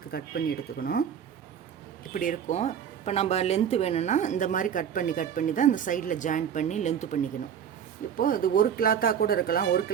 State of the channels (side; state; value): left; quieter; 8.5 dB